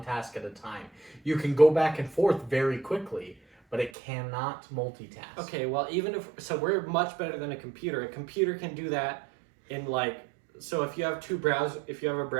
task at a time. You can go back and forth very quickly, but it cannot multitask. Okay, well, even if so, we're much better than a computer. A computer can do that in like. So if you have if you have a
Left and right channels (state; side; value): drops out; left; at 3.9 s